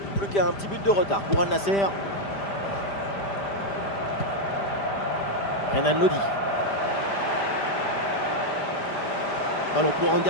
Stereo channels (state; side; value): late; right; 5.0 ms